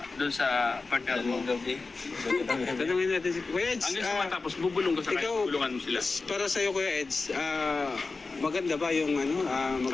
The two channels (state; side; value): quieter; right; 3.9 dB